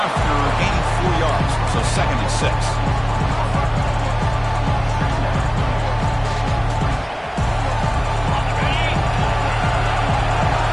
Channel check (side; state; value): both; identical; correlation 1.00